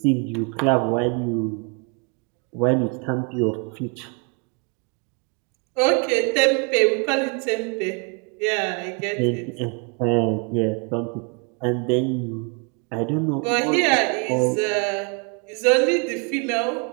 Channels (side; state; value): left; quieter; 35.5 dB